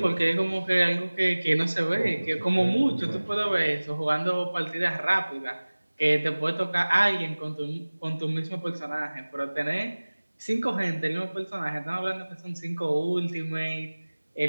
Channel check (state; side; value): inverted; both; correlation -1.00